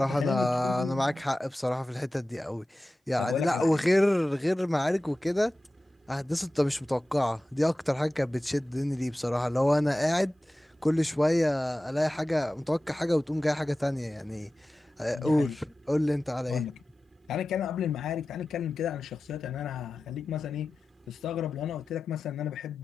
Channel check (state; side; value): normal; both; correlation 0.95